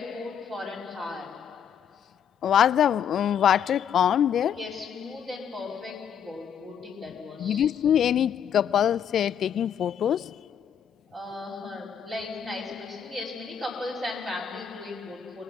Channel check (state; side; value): quieter; right; 8.4 dB